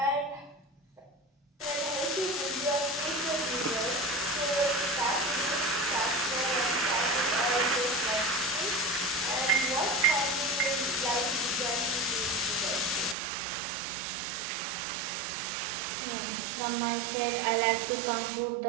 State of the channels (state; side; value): drops out; left; at 13.2 s